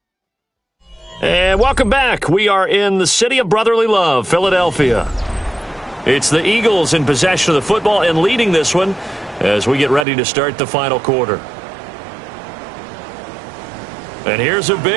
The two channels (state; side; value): drops out; left; at 10.1 s